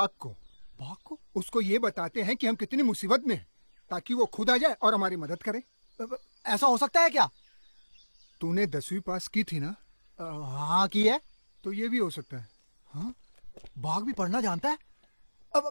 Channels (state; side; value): inverted; both; correlation -1.00